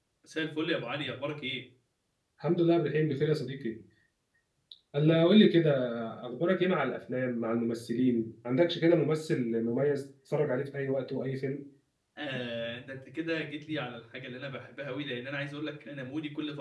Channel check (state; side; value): identical; both; correlation 1.00